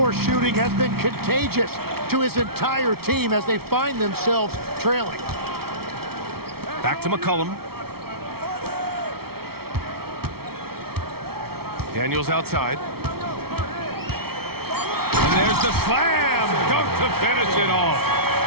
shooting has been contagious to his entire team as they find themselves trailing. Back to McCollum. Daniels outside. And there's the slam dunk to finish it off.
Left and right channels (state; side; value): late; left; 0.95 ms